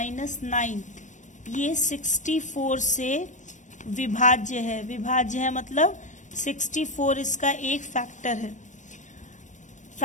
ये 64 से विभाज्य है। विभाज्य है मतलब 64 इसका एक फैक्टर है।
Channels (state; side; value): late; right; 0.35 ms